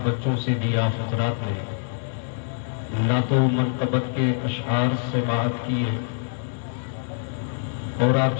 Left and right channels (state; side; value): silent; right; digital silence